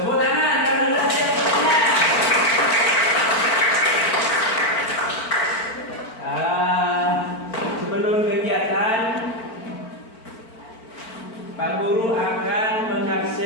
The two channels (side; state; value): right; late; 4.5 ms